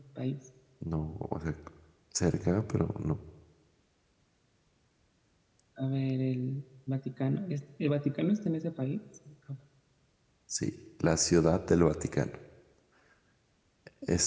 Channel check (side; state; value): both; identical; correlation 1.00